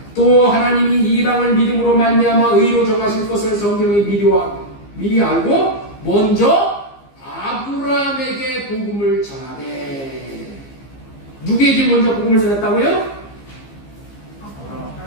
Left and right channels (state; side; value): late; right; 15 ms